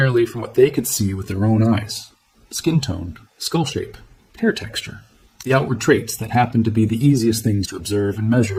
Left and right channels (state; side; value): identical; both; correlation 1.00